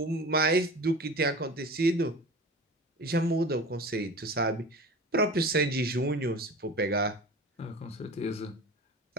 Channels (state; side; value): normal; both; correlation 0.36